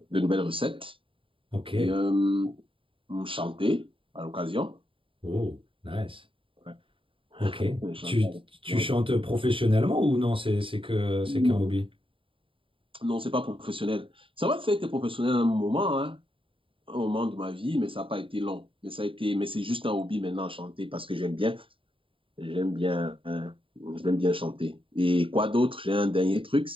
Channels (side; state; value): left; late; 0.25 ms